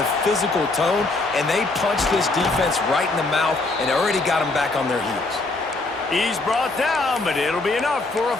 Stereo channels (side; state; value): right; quieter; 3.2 dB